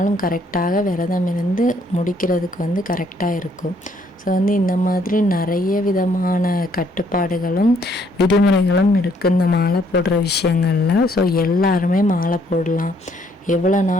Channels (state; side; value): normal; both; correlation 0.67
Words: கரெக்டாக விரதம் இருந்து முடிக்கிறதுக்கு வந்து கரெக்டாக இருக்கும். ஸோ வந்து இந்த மாதிரி நிறைய விதமான கட்டுப்பாடுகளும் விதிமுறைகளும் இருக்குது இந்த மாலை போடுற விஷயங்களில். ஸோ எல்லாருமே மாலை போடலாம், எவ்வளோ